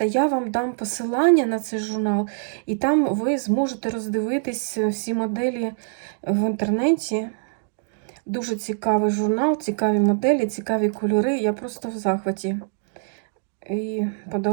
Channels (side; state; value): left; silent; 63 dB below the other